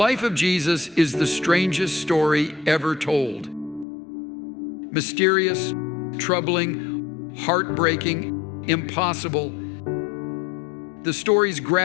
of Jesus is the strangest story ever told. Mysterious, troubling, heartbreaking, impossible. The stories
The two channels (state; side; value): drops out; right; at 3.9 s